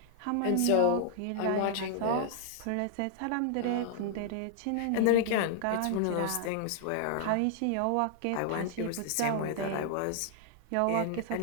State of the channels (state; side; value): different; both; correlation -0.01